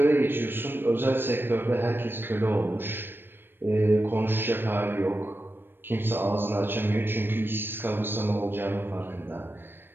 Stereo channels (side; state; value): left; late; 0.098 ms